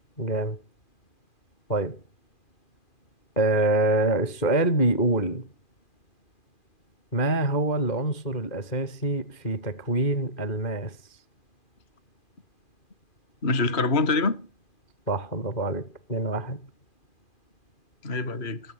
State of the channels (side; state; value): right; late; 2.4 ms